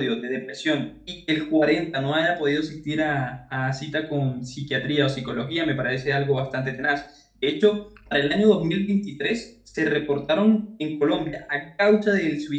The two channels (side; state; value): both; identical; correlation 1.00